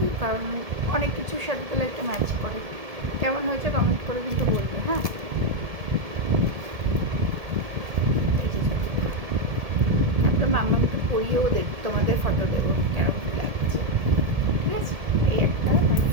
কারণ অনেক কিছুর সাথে তাহলে একটা ম্যাচ করে। কেমন হয়েছে কমেন্ট করে কিন্তু বলবে। হ্যাঁ, তারপরে মাম্মাকে পরিয়েও দেখি, তোমাদের ফটো দেবো কেরকম লাগছে, ঠিক আছে? এই একটা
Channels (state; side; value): late; left; 1.7 ms